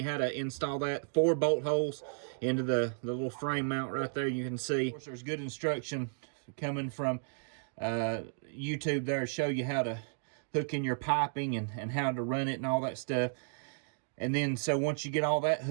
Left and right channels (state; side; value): silent; left; digital silence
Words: how to install that. 4 bolt holes into the little frame mount right there. You can see. Of course, there's good instruction coming from YouTube there to show you how to hook in your piping and how to run it and all that stuff. And then, so once you get all that